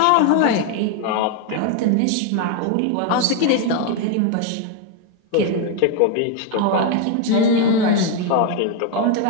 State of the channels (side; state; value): both; different; correlation 0.01